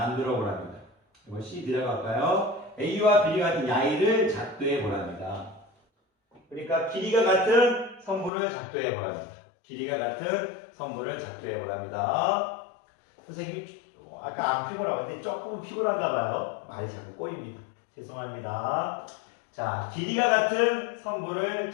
보랍니다. 이거 C 들어갈까요? A와 B 같은 야이를 작도해 보랍니다. 그러니까 길이가 같은 선분을 작도해 보랍니다. 길이가 같은 선분을 작도해 보랍니다. 선생님이 아까 안 피곤한데 조금 피곤한가 봐요. 말이 자꾸 꼬입니다. 죄송합니다. 자, 길이가 같은 선분을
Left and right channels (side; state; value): right; drops out; at 8.3 s